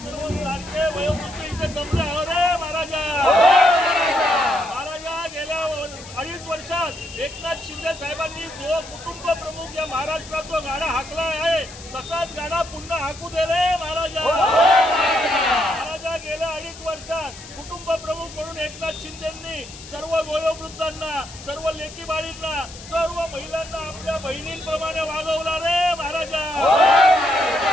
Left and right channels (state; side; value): noise; left; hiss, 16 dB below the sound